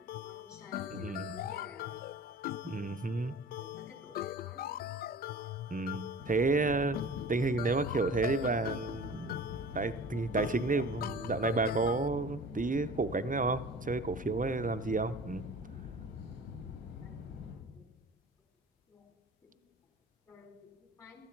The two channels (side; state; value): both; normal; correlation 0.41